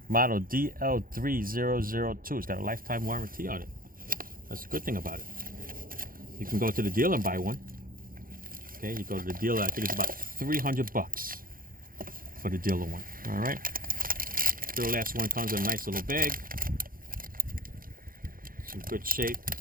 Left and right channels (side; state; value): left; late; 0.41 ms